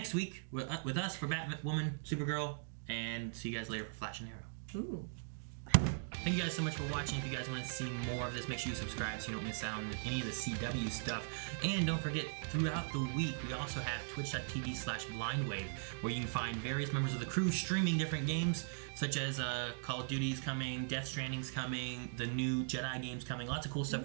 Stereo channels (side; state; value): left; silent; digital silence